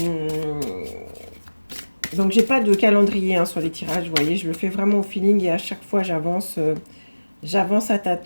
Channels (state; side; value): inverted; both; correlation -1.00